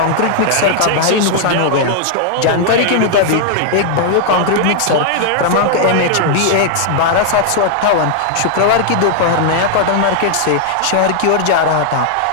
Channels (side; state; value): both; different; correlation 0.00